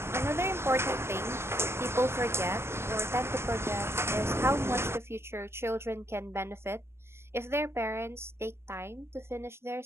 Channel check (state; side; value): late; left; 0.12 ms